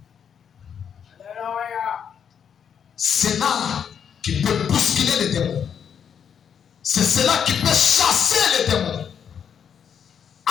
C'est là qui peut bousculer les démons. C'est cela qui peut chasser les démons.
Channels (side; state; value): right; quieter; 7.9 dB